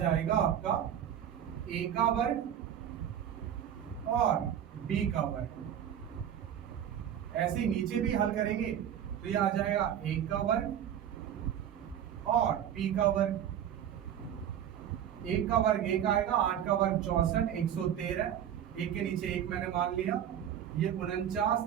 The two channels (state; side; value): quieter; left; 9.9 dB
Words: आपका a का वर्ग और b का वर्ग। ऐसे ही नीचे भी हल करेंगे तो ये आ जाएगा a का वर्ग और p का वर्ग। 1 का वर्ग 1 आएगा, 8 का वर्ग 64, 113, 1 के नीचे 1 मैंने मान लिया, ये 49,